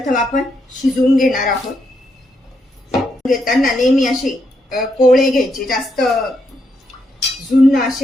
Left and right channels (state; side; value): normal; both; correlation 0.79